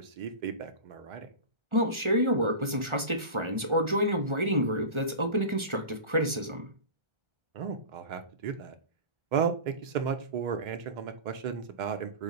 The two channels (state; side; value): late; left; 1.4 ms